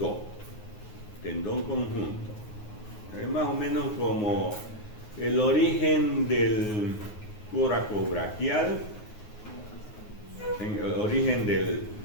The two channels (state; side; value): late; right; 9.5 ms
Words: Tendón conjunto. Es más o menos como el origen del coracobraquial, el origen del